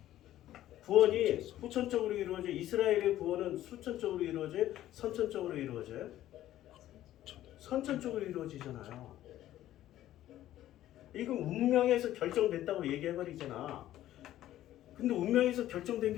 구원이 후천적으로 이루어져요? 이스라엘의 구원은 수천적으로 이루어져요? 선천적으로 이루어져요? 선천적으로 이루어지잖아요. 이건 운명에서 결정됐다고 얘기해버리잖아. 근데 운명에서 결정된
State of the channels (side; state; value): right; quieter; 13.4 dB